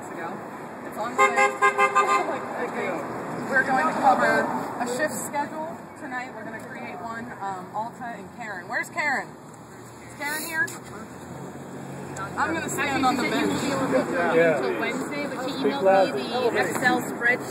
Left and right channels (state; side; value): identical; both; correlation 1.00